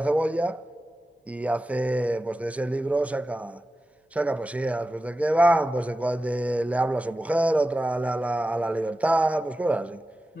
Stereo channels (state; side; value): normal; both; correlation 0.93